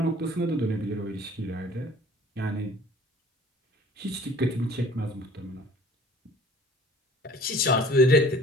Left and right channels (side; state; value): both; normal; correlation 0.49